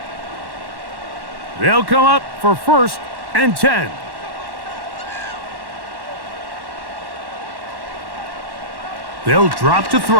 They'll come up for 1st and 10. They'll drop to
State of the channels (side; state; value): left; late; 1.1 ms